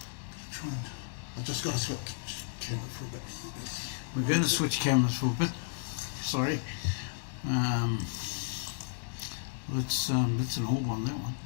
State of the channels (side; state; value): right; silent; 56 dB below the other